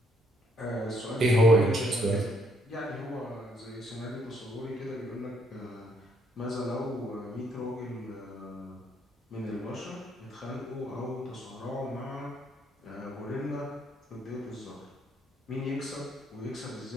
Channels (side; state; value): both; normal; correlation 0.70